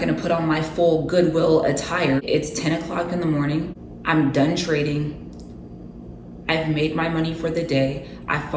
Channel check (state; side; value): identical; both; correlation 1.00